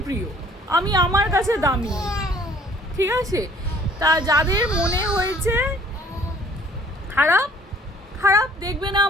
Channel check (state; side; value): normal; both; correlation 0.57